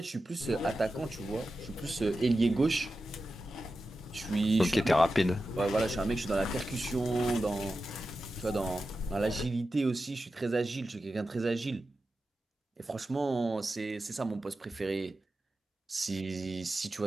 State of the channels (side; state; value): both; normal; correlation 0.92